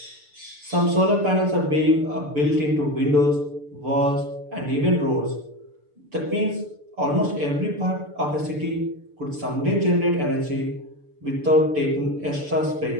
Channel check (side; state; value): left; late; 6.8 ms